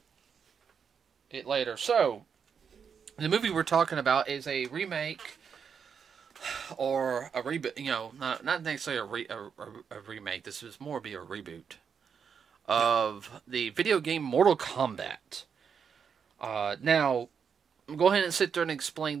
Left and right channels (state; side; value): quieter; left; 6.8 dB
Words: later. So, the movie we're talking about is a remake or a reboot, not necessarily a remake. This is more be a reboot of the video game Mortal Kombat. Now, go ahead and sit there and explain